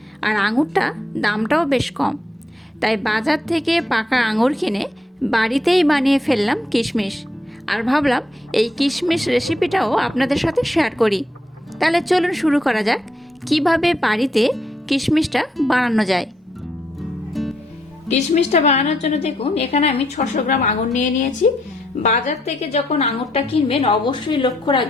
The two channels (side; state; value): both; normal; correlation 0.76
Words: আর আঙুরটা দামটাও বেশ কম। তাই বাজার থেকে পাকা আঙুর কিনে বাড়িতেই বানিয়ে ফেললাম কিশমিশ, আর ভাবলাম এই কিশমিশ রেসিপিটাও আপনাদের সাথে শেয়ার করি। তাহলে চলুন শুরু করা যাক কিভাবে বাড়িতে কিশমিশটা বানানো যায়। কিশমিশটা বানানোর জন্য দেখুন, এখানে আমি 600 গ্রাম আঙুর নিয়ে নিয়েছি। বাজার থেকে যখন আঙুরটা কিনবেন অবশ্যই লক্ষ্য